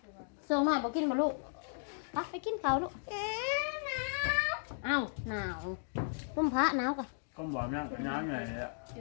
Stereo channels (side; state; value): right; silent; digital silence